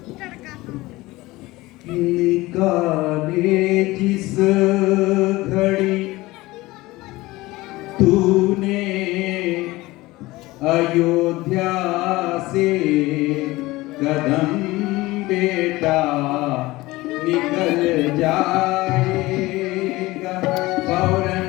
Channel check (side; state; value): right; quieter; 19.7 dB